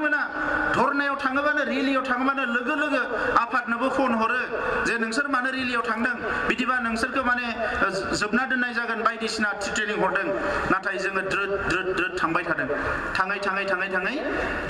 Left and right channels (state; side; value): identical; both; correlation 1.00